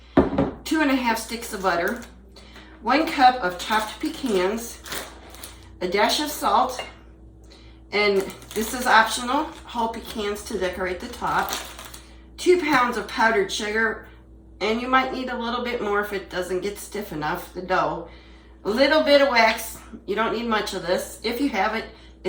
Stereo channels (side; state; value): both; identical; correlation 1.00